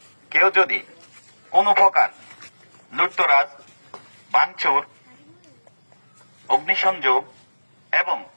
কেউ যদি কোনো প্রকার লুটতরাজ, ভাঙচুর, অগ্নিসংযোগ এবং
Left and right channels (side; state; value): both; inverted; correlation -1.00